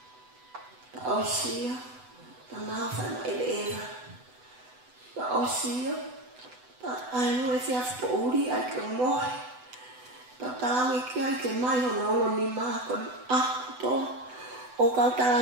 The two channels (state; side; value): late; left; 8.0 ms